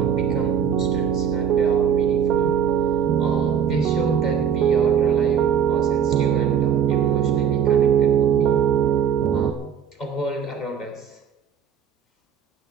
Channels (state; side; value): quieter; left; 8.1 dB